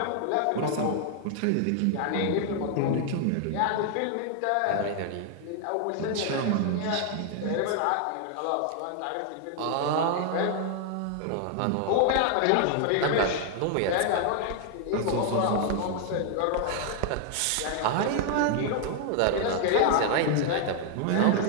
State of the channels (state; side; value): different; both; correlation 0.00